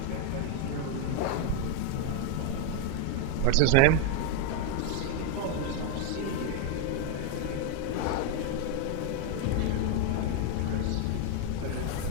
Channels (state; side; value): different; both; correlation 0.01